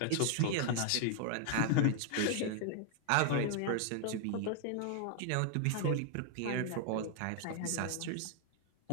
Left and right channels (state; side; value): different; both; correlation 0.00